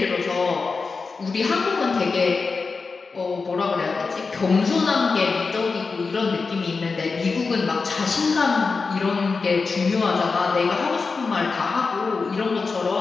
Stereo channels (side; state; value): right; quieter; 4.5 dB